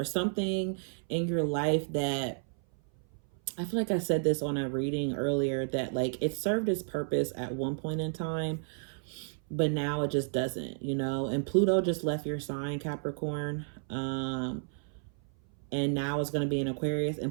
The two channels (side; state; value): left; silent; 57 dB below the other